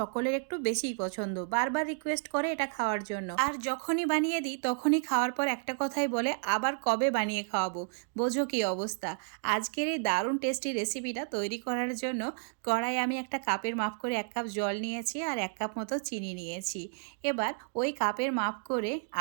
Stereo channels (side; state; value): left; silent; 57 dB below the other